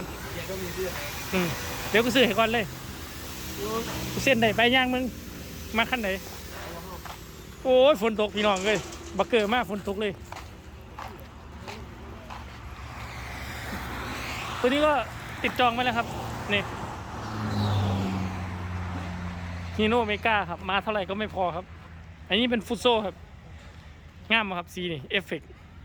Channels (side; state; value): both; identical; correlation 1.00